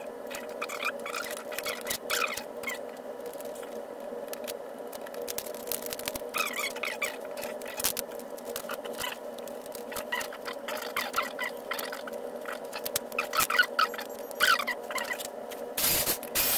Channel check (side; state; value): both; identical; correlation 1.00